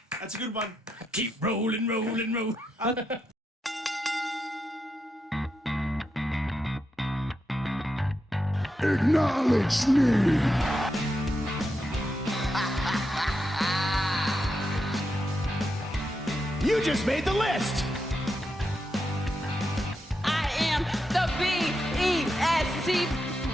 That's a good one. Keep rolling. Acknowledge me. You just made the list. I am the B-E-S-T.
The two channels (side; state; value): both; normal; correlation 0.85